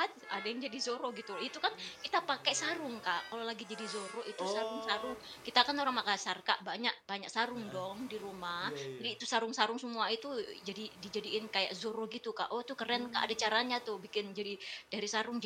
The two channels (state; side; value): identical; both; correlation 1.00